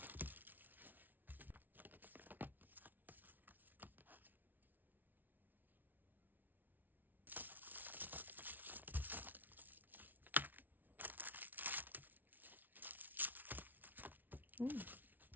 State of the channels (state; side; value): late; left; 0.084 ms